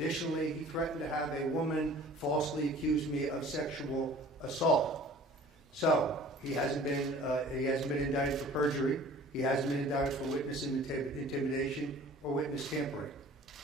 he threatened to have a woman falsely accuse me of sexual assault. So he hasn't been indicted for perjury. He hasn't been indicted for witness intimidation or witness tampering.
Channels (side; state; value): both; normal; correlation 0.48